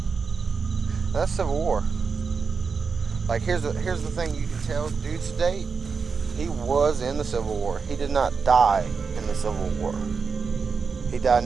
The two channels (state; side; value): quieter; left; 5.3 dB